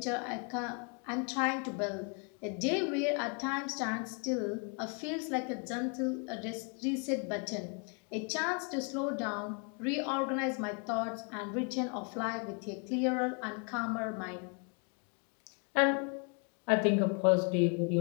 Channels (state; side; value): quieter; right; 37.2 dB